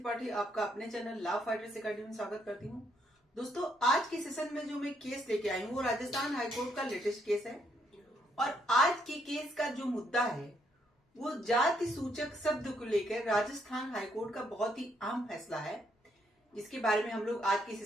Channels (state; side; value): normal; both; correlation 0.73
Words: आपका अपने चैनल लॉ फाइटर्स अकेडमी में स्वागत करती हूँ। दोस्तों, आज के सेशन में जो मैं केस लेके आई हूँ वो राजस्थान हाईकोर्ट का लेटेस्ट केस है। और आज के केस का जो मुद्दा है वो जाति सूचक शब्द को लेकर राजस्थान हाईकोर्ट का बहुत ही अहम फैसला है, जिसके बारे में हम लोग आज के